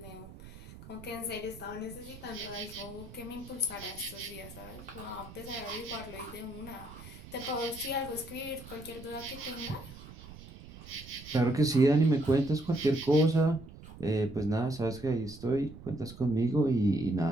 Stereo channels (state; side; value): noise; right; rumble, 16 dB below the sound